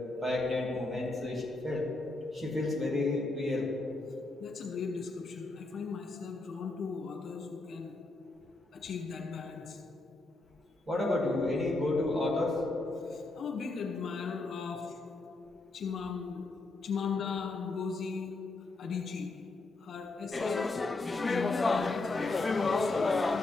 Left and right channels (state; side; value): quieter; right; 3.1 dB